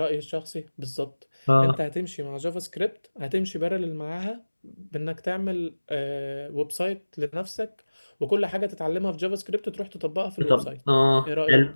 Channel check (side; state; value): both; inverted; correlation -1.00